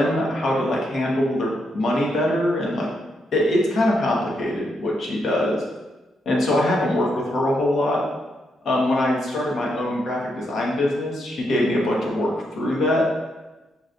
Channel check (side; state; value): both; normal; correlation 0.80